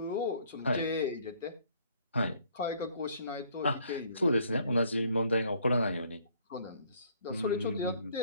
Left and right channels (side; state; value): both; inverted; correlation -0.61